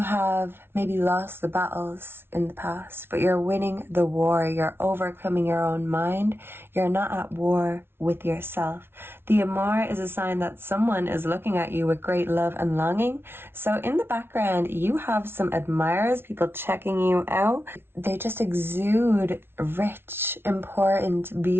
maybe lost the battles in the past, but you're winning the war. You're overcoming your own mind. You're not at war with yourself. The amour is a sign that someone is looking at you with great love and longing. So in the background, you have some admirers, people checking you out. They just exude rich, important,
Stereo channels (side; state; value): left; late; 0.11 ms